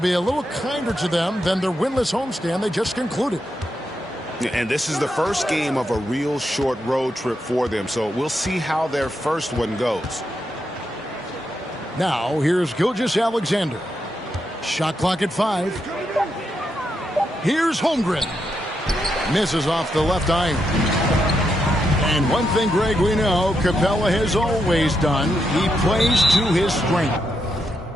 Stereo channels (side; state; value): both; normal; correlation 0.82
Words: a little kinder to them than their winless homestand they just concluded. And this is the first game of a real short road trip for them, so we'll see how their first one goes. Now, here's Gilgeous-Alexander. Shot clock at 5. Here's Holmgren. Misses off the left iron. And one thing, Greg, we know Capella has always done. He plays to his strength.